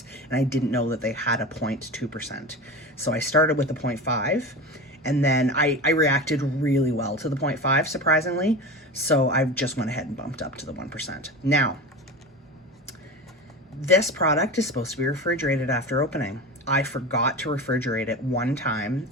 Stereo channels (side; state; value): both; normal; correlation 0.28